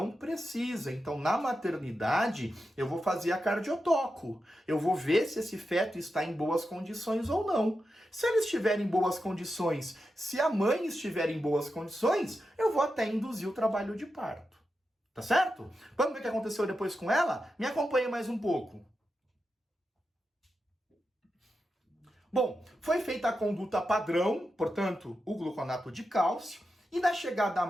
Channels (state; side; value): normal; both; correlation 0.89